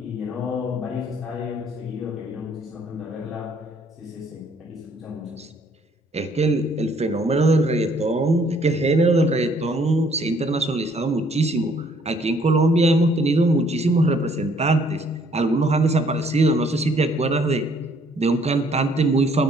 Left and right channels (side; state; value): both; normal; correlation 0.63